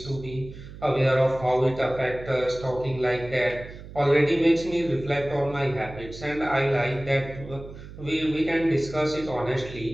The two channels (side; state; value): right; noise; hum, 15 dB below the sound